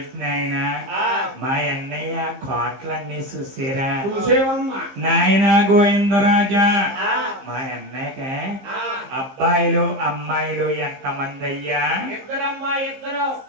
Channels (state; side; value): late; left; 15 ms